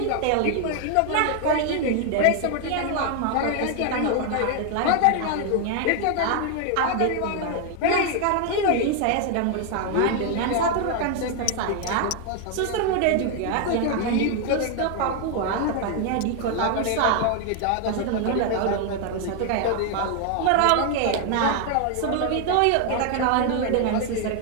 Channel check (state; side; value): different; both; correlation 0.00